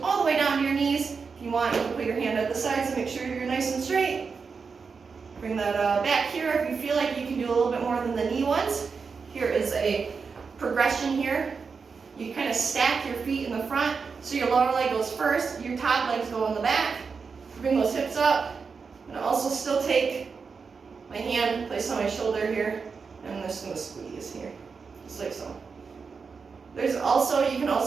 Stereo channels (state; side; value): quieter; left; 5.3 dB